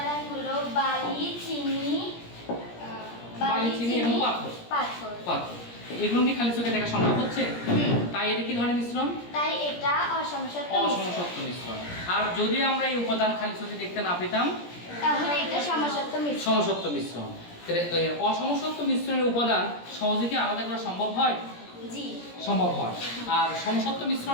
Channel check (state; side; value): late; right; 17 ms